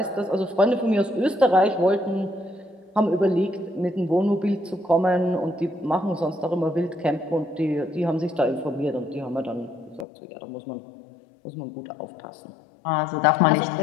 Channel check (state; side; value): drops out; right; at 10.1 s